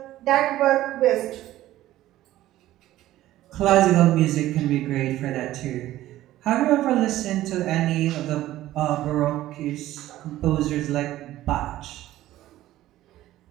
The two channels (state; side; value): quieter; left; 14.7 dB